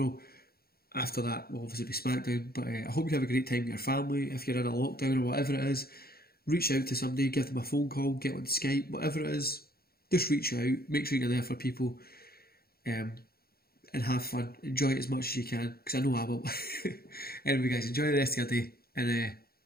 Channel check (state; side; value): late; right; 0.44 ms